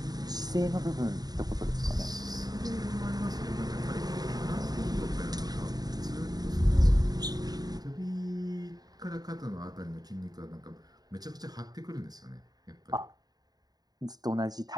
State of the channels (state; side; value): late; left; 0.19 ms